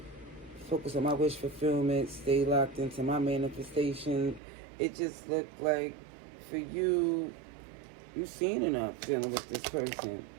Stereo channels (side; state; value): left; drops out; at 4.4 s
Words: focus on my wish fulfillment, stay locked into my manifestation. It just looked like for you, you've seen enough dealing with this person.